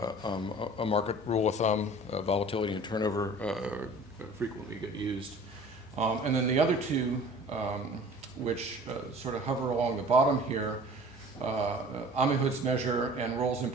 a market rule of thumb. Volatility and turnover frequently get used. And then the other two, which sort of hover along the bottom here, Amihud's measure and Roll's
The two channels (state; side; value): normal; both; correlation 0.46